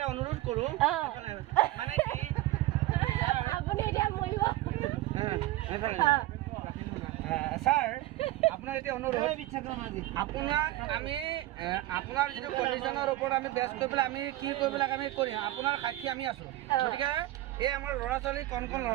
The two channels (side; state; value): left; quieter; 16.7 dB